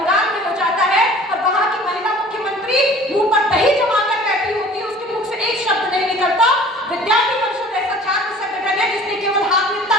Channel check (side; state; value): both; normal; correlation 0.47